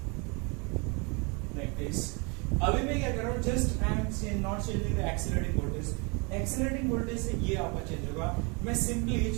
लाइक दिस। अभी मैं क्या कर रहा हूँ, just I am not changing the accelerating voltage, accelerating voltage से ये आपका चेंज होगा। मैं सिंपली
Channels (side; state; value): left; quieter; 31.0 dB